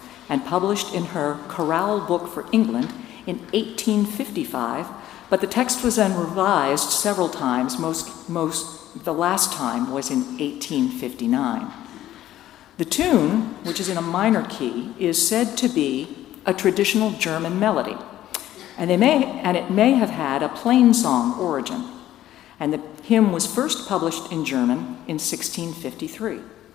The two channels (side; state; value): right; quieter; 13.2 dB